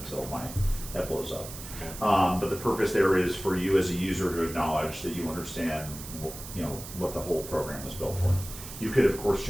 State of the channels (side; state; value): right; noise; hiss, 12 dB below the sound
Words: my head blows up. Okay. But the purpose there is for you as a user to acknowledge that you understand, what the whole program was built for. You could, of course,